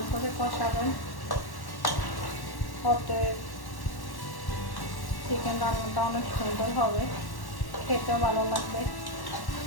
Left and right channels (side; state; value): right; late; 1.1 ms